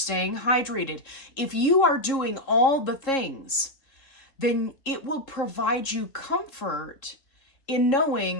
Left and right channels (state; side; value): late; right; 3.7 ms